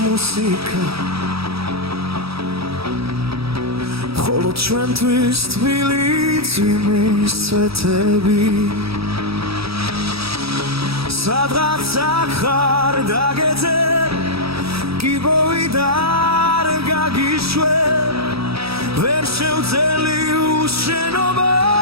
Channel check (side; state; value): left; late; 0.77 ms